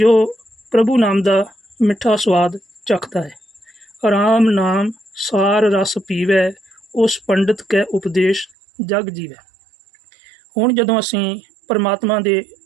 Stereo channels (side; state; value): left; drops out; at 8.5 s